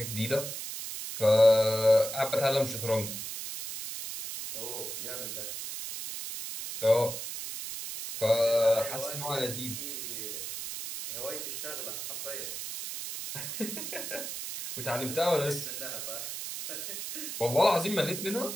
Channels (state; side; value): noise; right; hiss, 6 dB below the sound